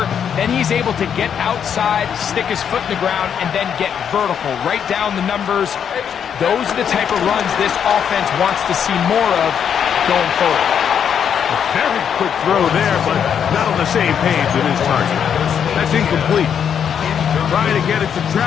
Then he's able to get outside, stick his foot in the ground, and then get vertical. Right down the numbers. Those are the type of runs this offense wants to see more of going forward. A very quick throw there, but not on the same page with his target. That's incomplete. Trying to get it to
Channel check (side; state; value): right; quieter; 8.1 dB